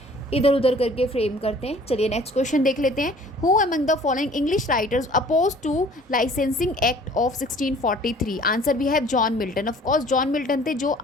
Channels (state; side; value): normal; both; correlation 0.52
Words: इधर उधर करके फ्रेम करते हैं. चलिए नेक्स्ट क्वेश्चन देख लेते हैं. Who among the following English writers oppose to Licensing Act of 1643. Answer भी है John Milton. Of course John Milton थे जो